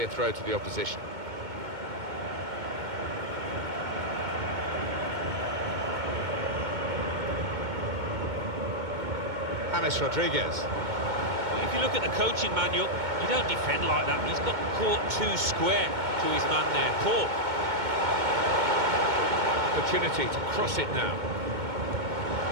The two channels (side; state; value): left; late; 2.2 ms